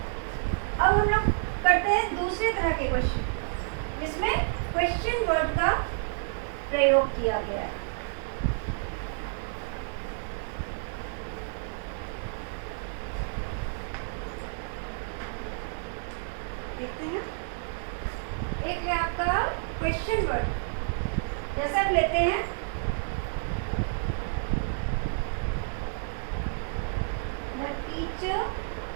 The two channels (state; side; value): silent; left; digital silence